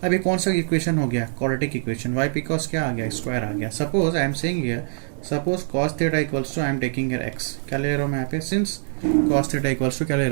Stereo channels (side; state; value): left; silent; digital silence